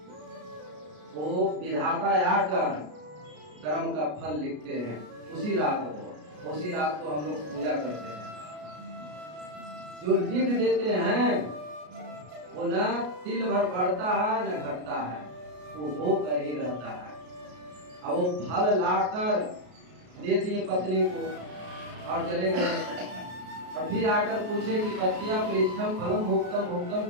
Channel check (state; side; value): late; left; 33 ms